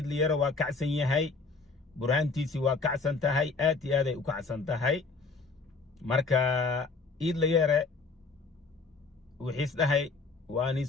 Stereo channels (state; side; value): quieter; right; 4.1 dB